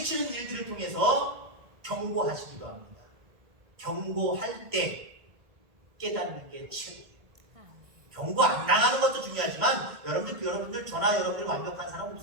일들을 통해서 경고하시기도 합니다. 경고할 때 깨닫는 게 최고예요. 경고 안 당하는 것도 중요하지만 여러분들 저나 여러분들 완벽한 사람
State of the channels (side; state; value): left; late; 1.8 ms